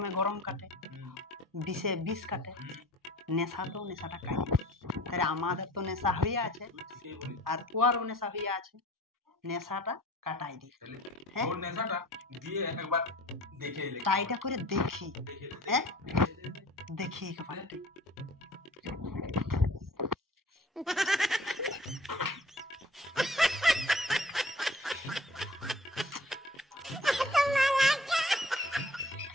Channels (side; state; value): both; normal; correlation 0.48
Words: গরম কাটে, বিষে বিষ কাটে, নেশাতেও নেশাটা কাটে। তাহলে আমাদের তো নেশা হয়ে আছে আর ওরও নেশা হয়ে আছে, নেশাটা কাটাই দি। হ্যাঁ ওর নেশাটা দিয়ে একবার দেখে এলে। ট্রাইটা করে দেখি। হ্যাঁ দেখি একবার।